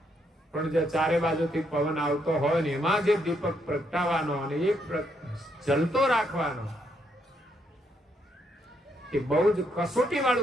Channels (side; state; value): both; normal; correlation 0.75